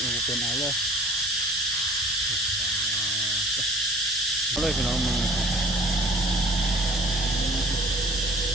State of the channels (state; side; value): normal; both; correlation 0.48